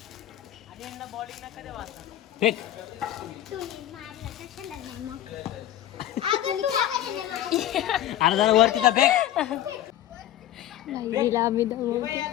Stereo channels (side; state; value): right; quieter; 12.5 dB